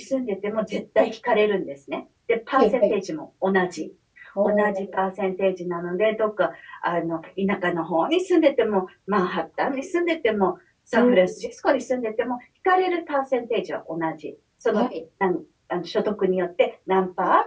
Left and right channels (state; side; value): identical; both; correlation 1.00